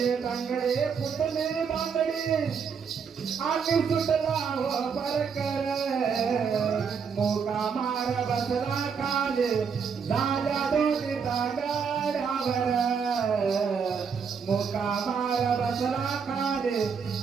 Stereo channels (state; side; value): quieter; left; 6.3 dB